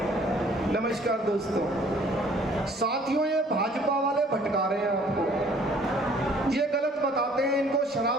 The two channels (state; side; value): normal; both; correlation 0.57